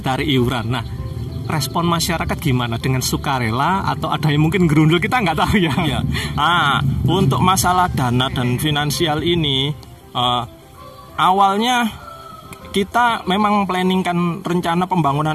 iuran. Nah, respon masyarakat gimana? Dengan sukarela atau ada yang mungkin gerundul, kita nggak tahu ya. Iya. Untuk masalah dana dan finansial ini, awalnya kita memang planningkan rencana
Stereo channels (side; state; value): both; identical; correlation 1.00